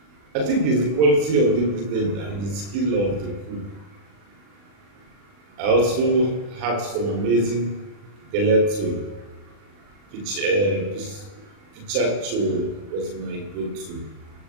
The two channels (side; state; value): left; late; 40 ms